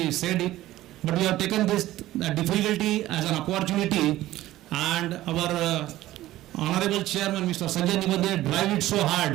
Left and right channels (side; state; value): left; quieter; 15.4 dB